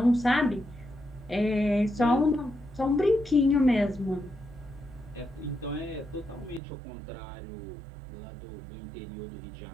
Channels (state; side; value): drops out; left; at 6.6 s